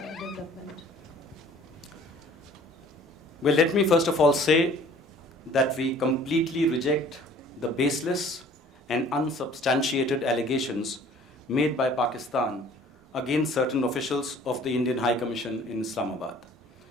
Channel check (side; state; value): both; normal; correlation 0.52